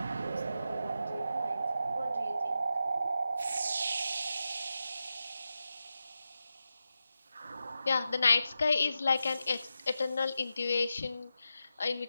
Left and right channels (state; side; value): inverted; both; correlation -0.90